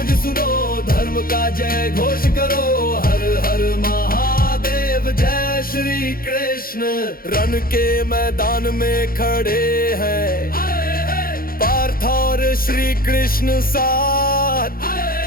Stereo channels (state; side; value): late; right; 0.42 ms